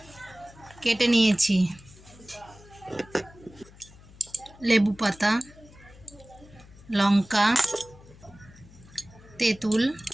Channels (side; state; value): left; noise; hum, 22 dB below the sound